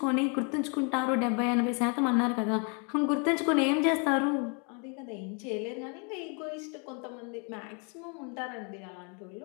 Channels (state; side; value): quieter; right; 36.8 dB